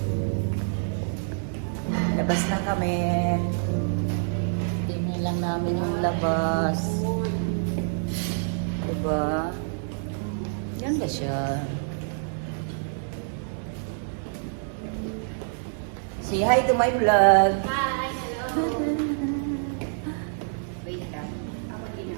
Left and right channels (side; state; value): left; silent; digital silence